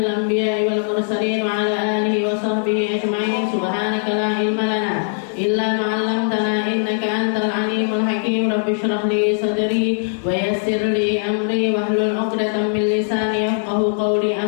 anbiya'i wal mursalin wa ala alihi wa sahbihi ajma'in. Subhanaka la ilma lana illa ma 'allamtana innaka antal alimul hakim. Rabbi shrah li sadri wa yassir li amri wahlul 'uqdatam min lisani yafqahu qawli.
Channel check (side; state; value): right; silent; 55 dB below the other